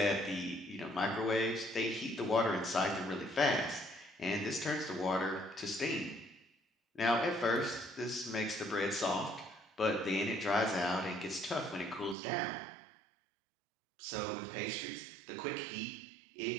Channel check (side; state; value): left; drops out; at 12.2 s